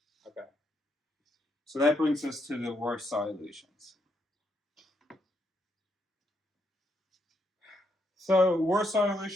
Okay. So that brings us to the Warsaw illusions. So Warsaw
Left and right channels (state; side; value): normal; both; correlation 0.77